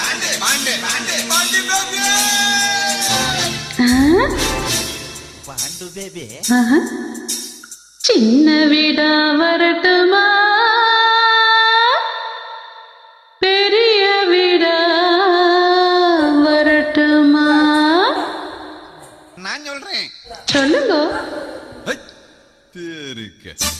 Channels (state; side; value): identical; both; correlation 1.00